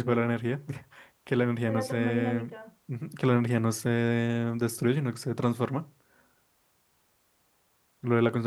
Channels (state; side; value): identical; both; correlation 1.00